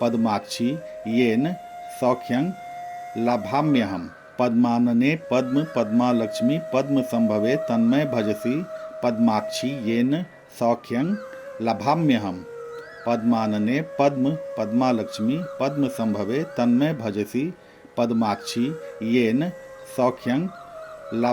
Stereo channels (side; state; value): both; identical; correlation 1.00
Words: पद्माक्षी येन सौख्यं लभाम्यहम्। पद्मानने पद्म पद्मालक्ष्मी पद्मसंभवे तन्मे भजसि पद्माक्षी येन सौख्यं लभाम्यहम्। पद्मानने पद्म पद्मालक्ष्मी पद्मसंभवे तन्मे भजसि पद्माक्षी येन सौख्यं